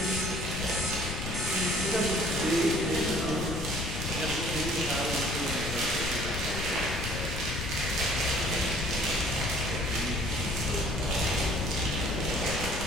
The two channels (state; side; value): noise; left; rumble, 4 dB below the sound